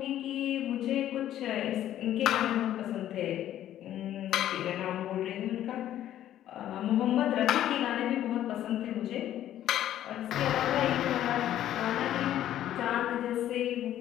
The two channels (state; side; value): quieter; right; 12.0 dB